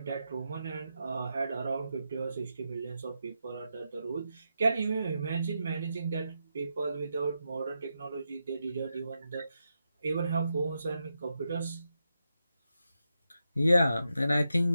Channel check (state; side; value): inverted; both; correlation -0.86